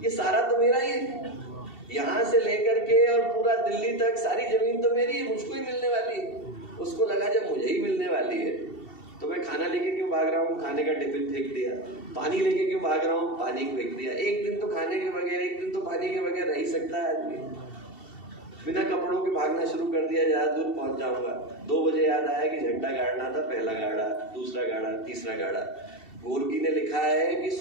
ये सारा तो मेरा ही है, यहाँ से लेकर के और पूरा दिल्ली तक सारी जमीन तो मेरी है, मुझको ही मिलने वाली है। उसको लगा जब मुझे ही मिलने वाली है तो मैं खाना लेके क्यों भाग रहा हूँ, खाने का टिफिन फेंक दिया। पानी लेके क्यों भाग रहा हूँ, पानी को फेंक दिया। एक दिन तो खाने के बगैर, एक दिन तो पानी के बगैर रह ही सकता है आदमी। बिना कपड़ों के भागना शुरू कर दिया, ज्यादा दूर पहुंच जाऊंगा। 2 बजे याद आया कि झंडा गाड़ना था, पहला गाड़ा, दूसरा गाड़ा, तीसरा गाड़ा। गोर्की ने लिखा है कि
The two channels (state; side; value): late; right; 2.7 ms